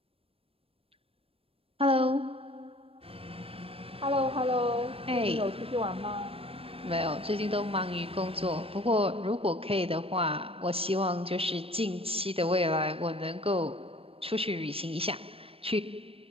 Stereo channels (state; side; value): late; left; 0.28 ms